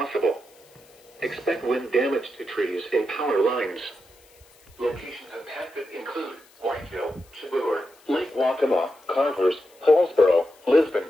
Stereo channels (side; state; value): left; noise; hiss, 28 dB below the sound